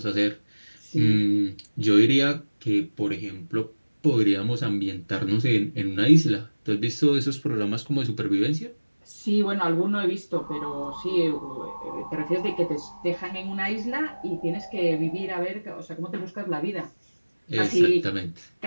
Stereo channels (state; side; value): inverted; both; correlation -1.00